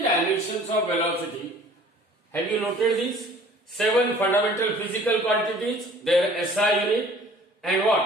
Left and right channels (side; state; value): both; normal; correlation 0.51